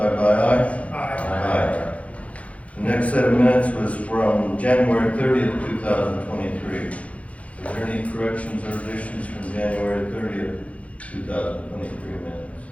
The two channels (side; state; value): right; late; 0.065 ms